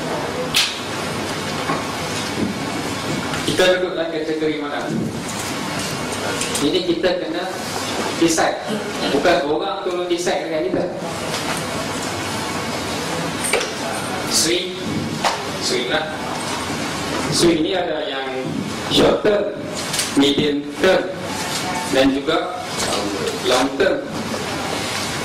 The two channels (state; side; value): identical; both; correlation 1.00